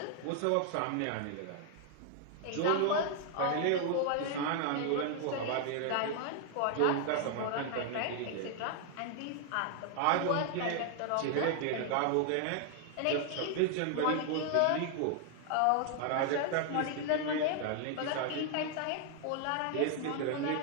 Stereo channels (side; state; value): both; different; correlation 0.00